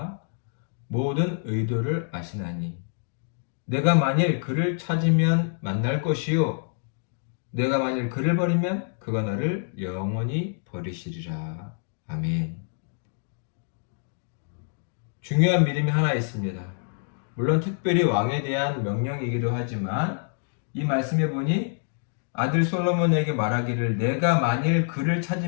모든 의도를 아시나니 내가 만일 그를 찾으면 만날 것이요 내가 만일 그를 버리면 그가 너를 영원히 버리시리라. 아멘. 중요한 믿음이 하나 있습니다. 물론 특별히 왕에 대한 명령이기도 하지만 이 말씀에 보니 아들 솔로몬에게 말하기를 내가 만일 그를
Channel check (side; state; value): right; silent; digital silence